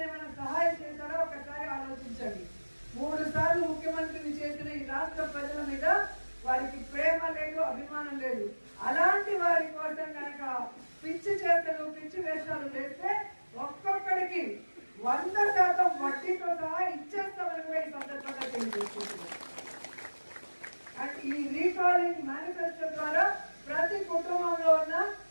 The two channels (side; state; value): both; inverted; correlation -1.00